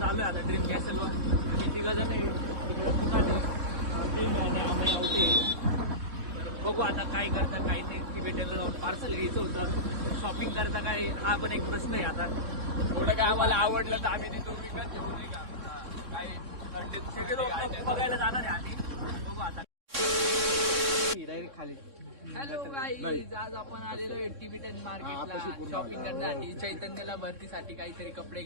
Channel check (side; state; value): left; late; 3.6 ms